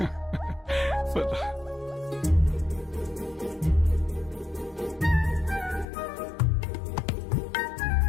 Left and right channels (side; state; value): right; drops out; at 5.9 s